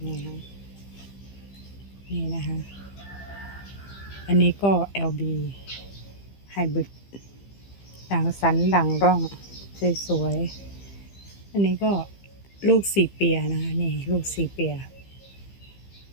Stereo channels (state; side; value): late; right; 15 ms